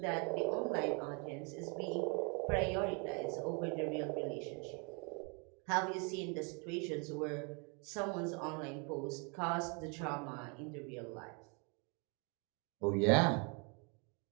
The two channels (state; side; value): quieter; left; 34.5 dB